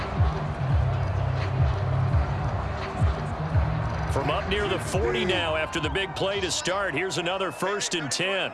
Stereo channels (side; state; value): both; identical; correlation 1.00